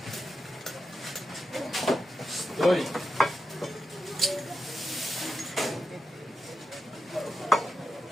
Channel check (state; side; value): normal; both; correlation 0.89